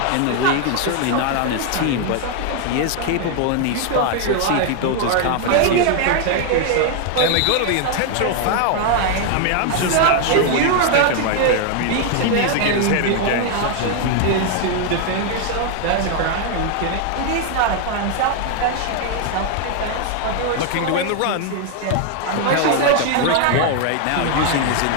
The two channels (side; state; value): both; different; correlation 0.00